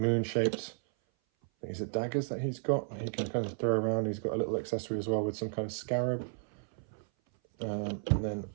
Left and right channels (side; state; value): left; silent; 56 dB below the other